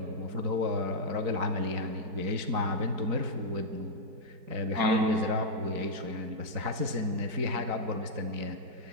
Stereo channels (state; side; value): late; left; 4.7 ms